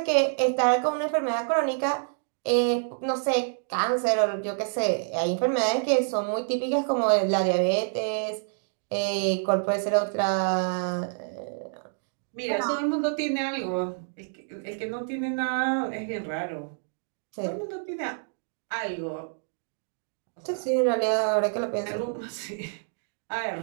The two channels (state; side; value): silent; left; digital silence